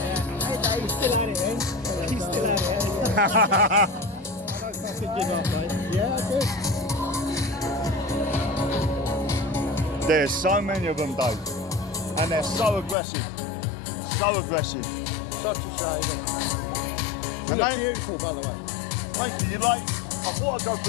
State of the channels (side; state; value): right; drops out; at 13.0 s